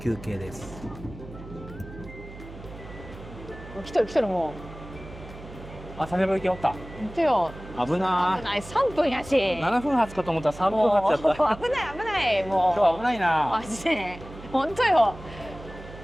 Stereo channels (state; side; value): noise; right; hum, 15 dB below the sound